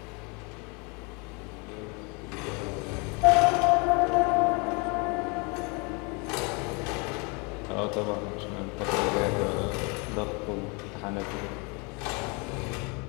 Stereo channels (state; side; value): quieter; right; 31.1 dB